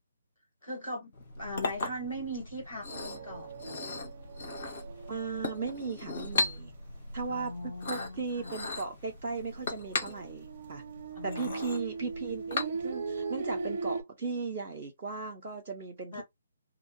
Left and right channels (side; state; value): both; inverted; correlation -0.66